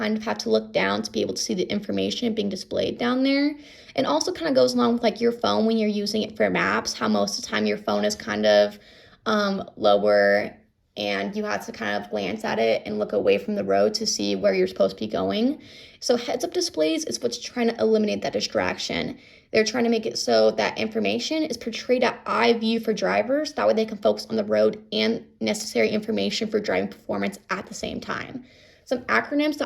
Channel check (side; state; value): both; identical; correlation 1.00